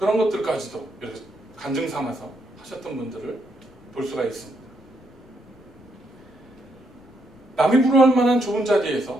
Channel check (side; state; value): both; normal; correlation 0.76